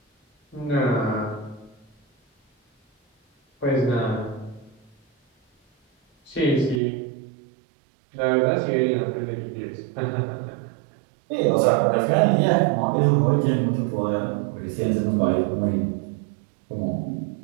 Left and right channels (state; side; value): drops out; left; at 6.8 s